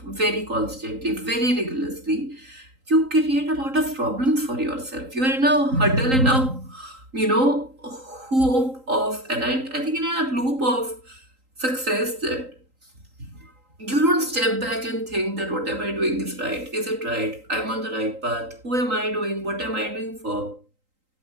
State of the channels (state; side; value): late; left; 3.8 ms